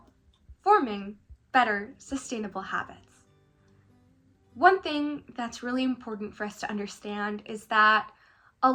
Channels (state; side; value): identical; both; correlation 1.00